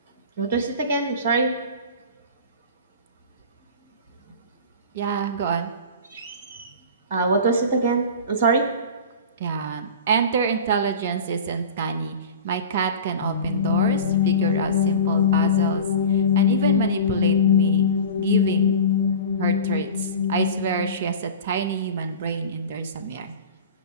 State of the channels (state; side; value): inverted; both; correlation -0.34